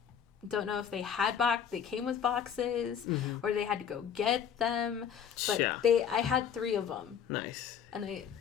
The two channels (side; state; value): right; quieter; 8.2 dB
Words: don't know if they had they came with boxes or they had to go get them, but I had 3 of them. Nice. And I